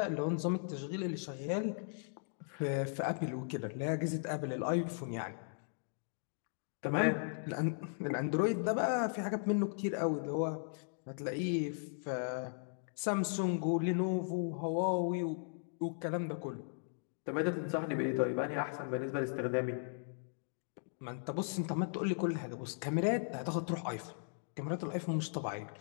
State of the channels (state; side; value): silent; right; digital silence